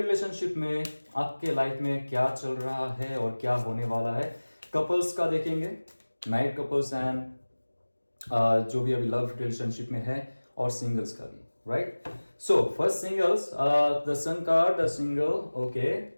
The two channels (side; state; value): both; inverted; correlation -1.00